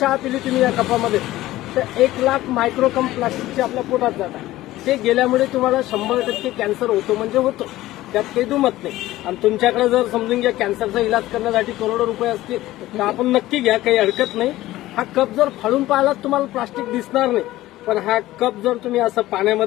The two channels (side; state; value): right; quieter; 16.2 dB